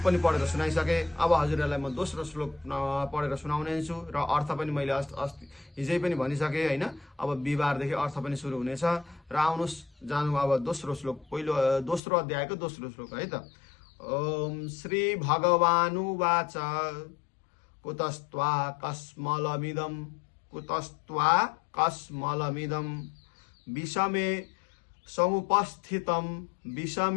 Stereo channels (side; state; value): right; drops out; at 12.0 s